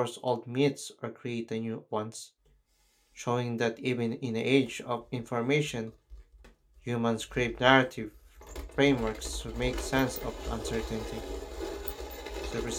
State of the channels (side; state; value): both; identical; correlation 1.00